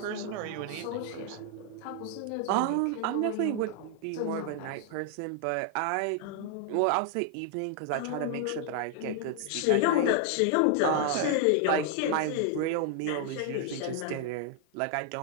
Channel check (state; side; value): different; both; correlation 0.00